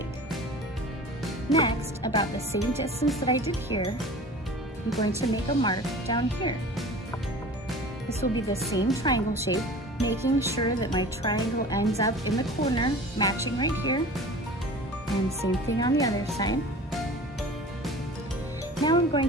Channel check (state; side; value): normal; both; correlation 0.40